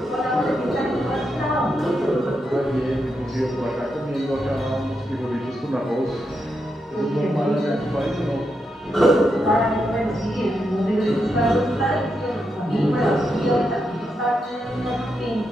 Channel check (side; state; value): both; normal; correlation 0.84